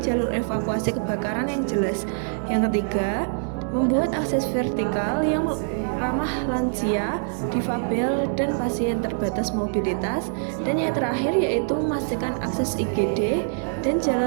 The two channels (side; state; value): left; silent; digital silence